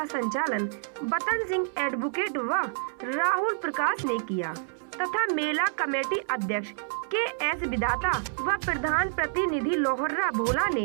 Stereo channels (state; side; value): silent; left; 59 dB below the other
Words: संचालन बतन सिंह एडवोकेट व राहुल प्रकाश ने किया तथा मेला कमेटी अध्यक्ष के.एस. विधाता व प्रधान प्रतिनिधि लोहर्रा भोला